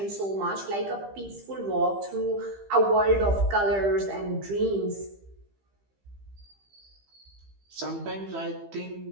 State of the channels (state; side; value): late; left; 15 ms